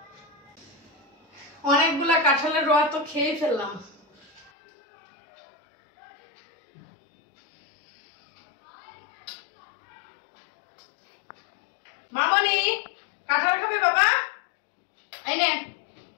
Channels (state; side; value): drops out; right; at 4.5 s